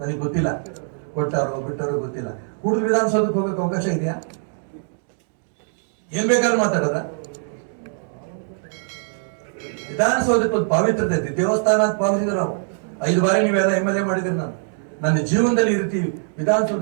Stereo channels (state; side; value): silent; left; digital silence